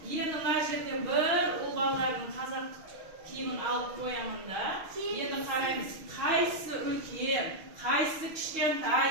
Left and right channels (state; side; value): late; left; 6.4 ms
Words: Endi mana yerga bir o'g'illarning qozoq kiyimini olib qo'yaman-da. Endi qaraymiz, qaysi ulkan, qaysi kichkintay